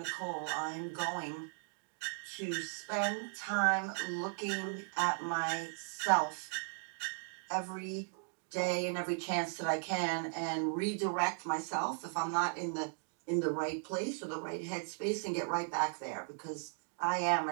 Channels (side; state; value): left; silent; 53 dB below the other